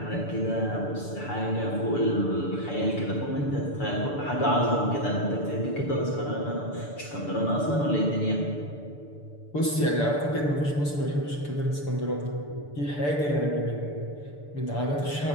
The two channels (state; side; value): late; right; 6.9 ms